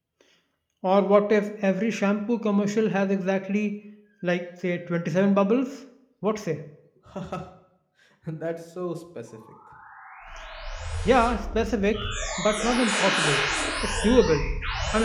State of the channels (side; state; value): both; identical; correlation 1.00